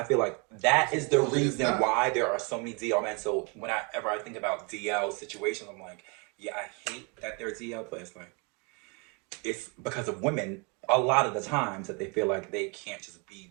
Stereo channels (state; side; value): quieter; left; 32.5 dB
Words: feel like that is the reason why there are so many DL men. So whenever I think about DL situations, I'm like, yeah, I hate that they're DL, but it's like it's because of women a lot of the times that they feel like they can't just be